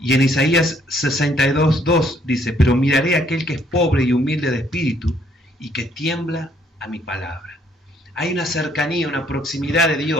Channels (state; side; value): normal; both; correlation 0.66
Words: en Isaías 62, 2 dice: pero miraré a aquel que es pobre y humilde de espíritu y que tiembla a mi palabra. Hay una cercanía, una proximidad de